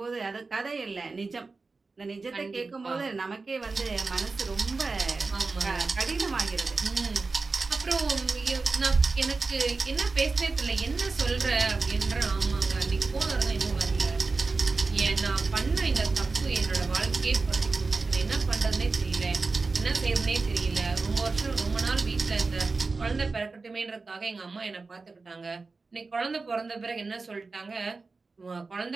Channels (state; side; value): quieter; left; 4.0 dB